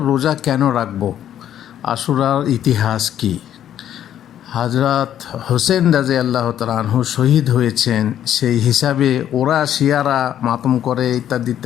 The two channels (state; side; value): quieter; right; 10.7 dB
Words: রোজা কেন রাখবো? আশুরার ইতিহাস কি? হজরত হোসেন রাজি আল্লাহ তাআলা শহীদ হয়েছেন, সেই হিসাবে ওরা শিয়ারা মাতম করে ইত্যাদি